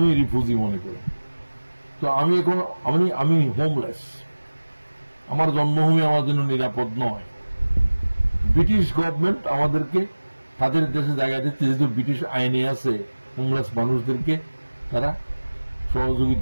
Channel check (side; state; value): both; inverted; correlation -1.00